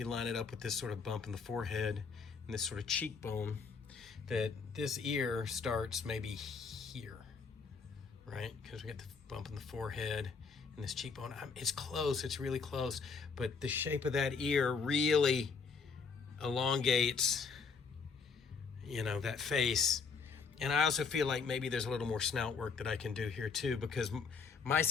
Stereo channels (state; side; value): quieter; right; 5.3 dB